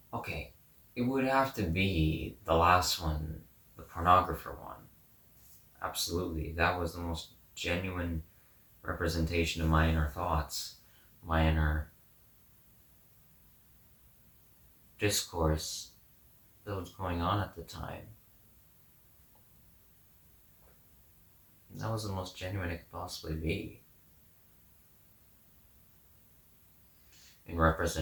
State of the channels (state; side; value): identical; both; correlation 1.00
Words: Okay, it would have to be the last one, the pornographer one. Absolutely, that was the most genuine representation of my inner thoughts, my inner discourse that was going on at the time. That was the most genuine it could possibly be. In